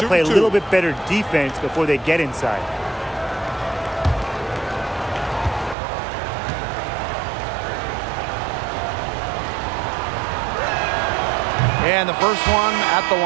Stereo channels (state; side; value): drops out; left; at 5.8 s